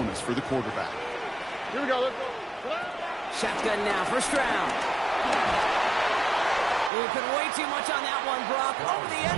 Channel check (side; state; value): left; drops out; at 6.9 s